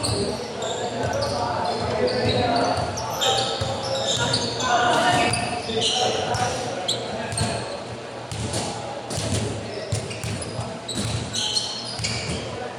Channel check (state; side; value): identical; both; correlation 1.00